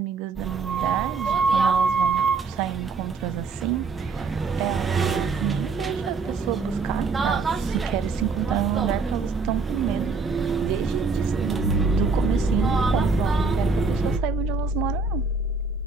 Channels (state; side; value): quieter; left; 4.4 dB